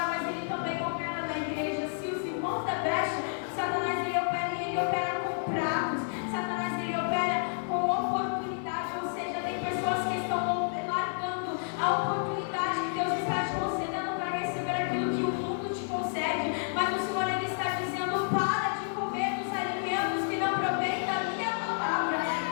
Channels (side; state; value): right; silent; 58 dB below the other